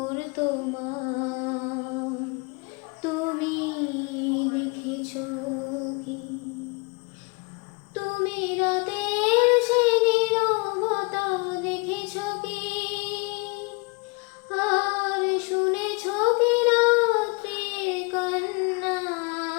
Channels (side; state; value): right; quieter; 29.5 dB